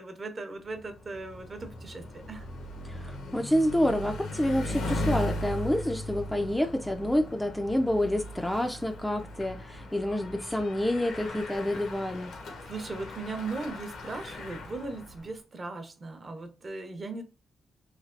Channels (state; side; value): normal; both; correlation 0.92